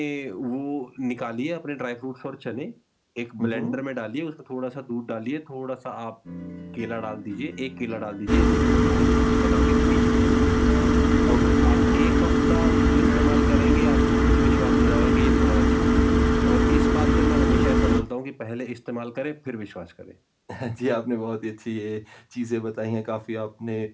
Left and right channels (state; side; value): identical; both; correlation 1.00